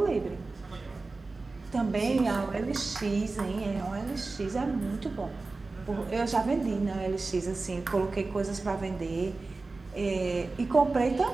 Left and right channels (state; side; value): quieter; left; 3.6 dB